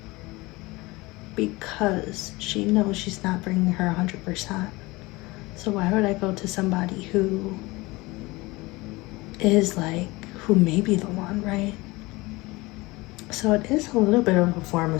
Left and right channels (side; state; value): right; quieter; 22.3 dB